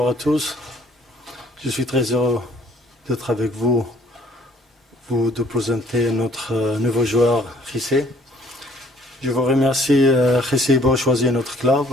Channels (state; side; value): normal; both; correlation 0.58